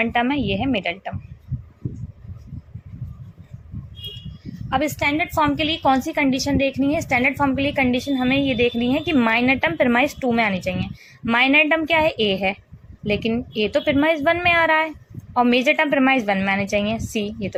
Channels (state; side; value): identical; both; correlation 1.00